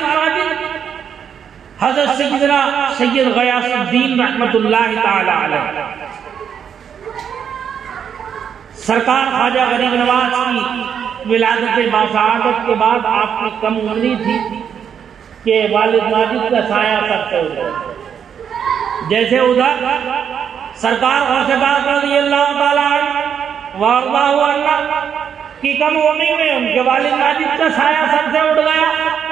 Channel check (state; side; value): quieter; left; 7.9 dB